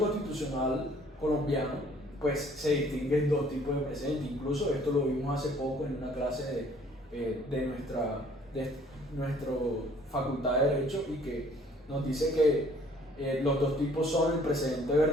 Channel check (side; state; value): both; normal; correlation 0.58